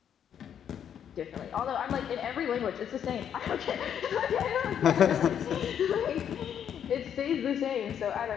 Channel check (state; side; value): quieter; right; 8.8 dB